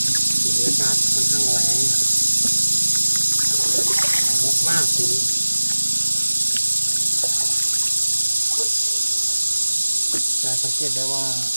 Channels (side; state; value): both; inverted; correlation -1.00